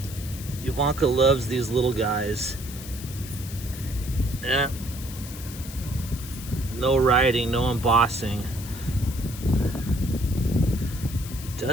Ivanka loves these little guys. Yeah. No writing, no embossing. It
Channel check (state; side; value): noise; left; hiss, 13 dB below the sound